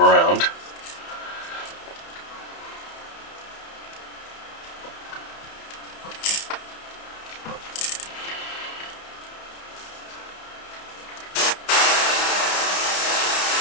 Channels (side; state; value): right; late; 31 ms